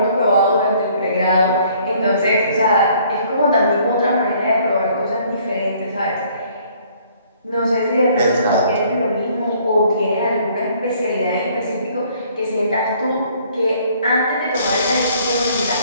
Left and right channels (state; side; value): inverted; both; correlation -0.60